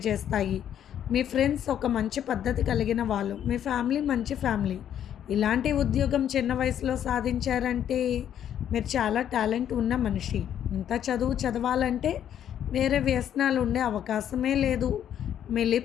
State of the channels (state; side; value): quieter; right; 10.0 dB